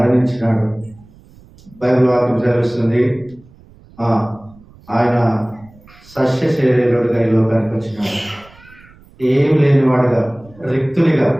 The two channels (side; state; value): right; noise; rumble, 25 dB below the sound